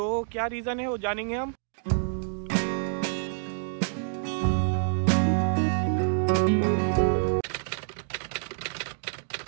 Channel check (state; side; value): silent; left; digital silence